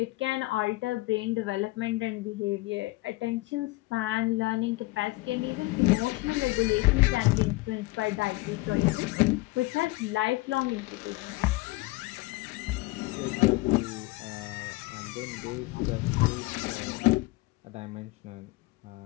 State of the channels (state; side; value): quieter; right; 21.5 dB